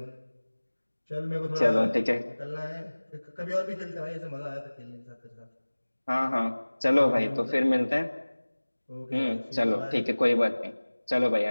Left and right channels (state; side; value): inverted; both; correlation -1.00